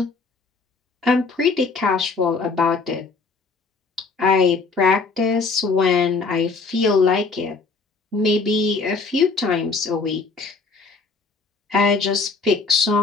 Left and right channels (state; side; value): quieter; right; 4.3 dB